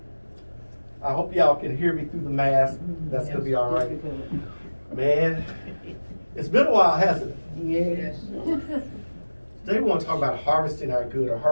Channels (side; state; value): both; inverted; correlation -1.00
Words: I hope y'all can hear me through the mask. That's going to be all right. Man, it's been a while, hasn't it? Yes. Today we want to talk about harvesting our good or